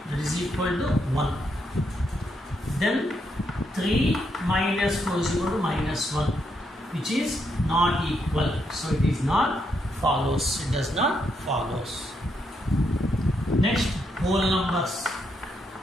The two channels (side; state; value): both; normal; correlation 0.79